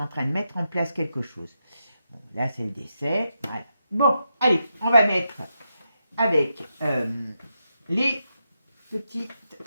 en train de mettre en place quelque chose. Bon, là, c'est le décès, voilà. Bon, allez, on va mettre avec les petits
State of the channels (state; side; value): inverted; both; correlation -0.85